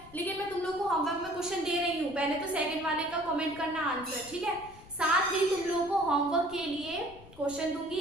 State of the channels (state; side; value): noise; left; rumble, 21 dB below the sound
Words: लेकिन मैं तुम लोग को होमवर्क में क्वेश्चन दे रही हूँ। पहले तो सेकंड वाले का कमेंट करना आंसर, ठीक है। साथ ही तुम लोगों को होमवर्क के लिए क्वेश्चन